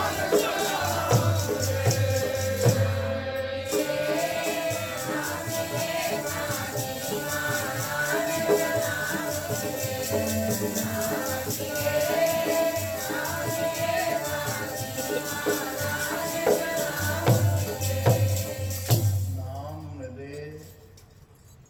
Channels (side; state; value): both; identical; correlation 1.00